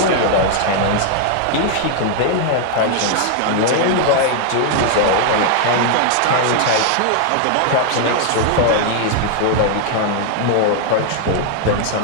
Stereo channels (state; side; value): different; both; correlation 0.00